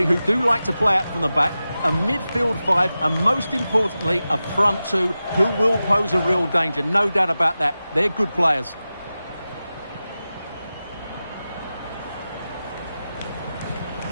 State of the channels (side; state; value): both; inverted; correlation -0.94